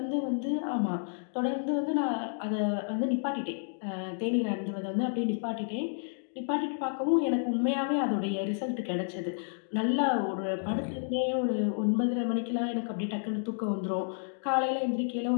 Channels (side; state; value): right; silent; digital silence